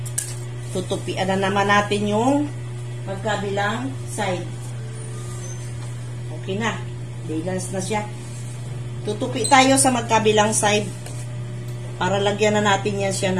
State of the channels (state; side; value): identical; both; correlation 1.00